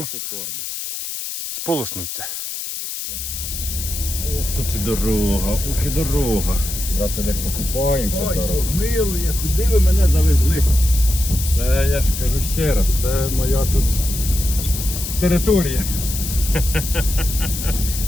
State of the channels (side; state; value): left; noise; hiss, 6 dB below the sound